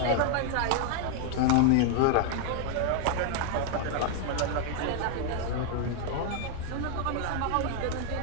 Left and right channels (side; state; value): both; different; correlation 0.00